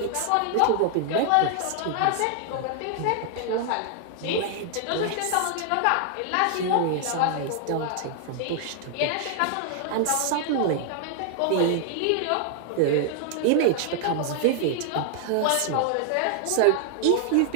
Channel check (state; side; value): different; both; correlation 0.00